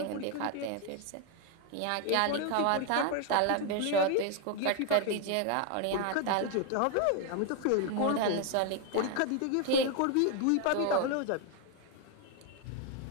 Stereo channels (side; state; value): both; different; correlation 0.01